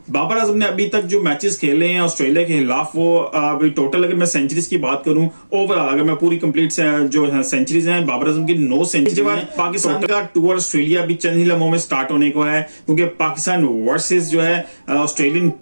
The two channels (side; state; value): both; inverted; correlation -1.00